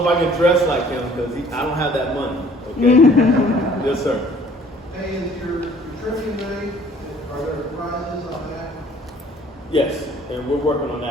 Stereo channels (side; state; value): both; normal; correlation 0.55